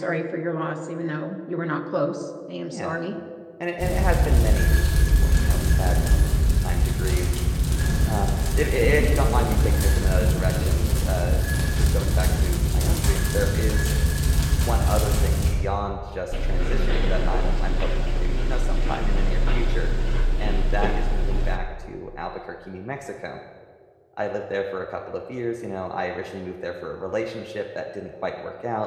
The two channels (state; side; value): identical; both; correlation 1.00